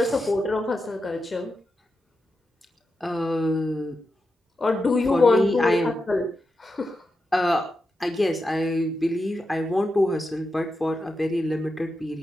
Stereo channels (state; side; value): normal; both; correlation 0.88